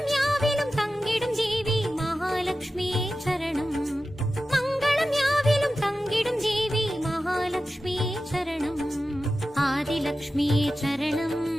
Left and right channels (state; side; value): normal; both; correlation 0.94